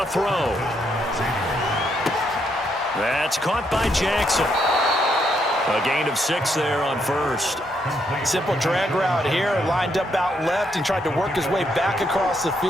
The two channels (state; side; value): normal; both; correlation 0.76